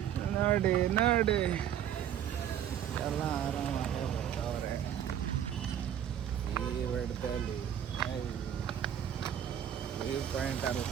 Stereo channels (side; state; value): left; quieter; 10.0 dB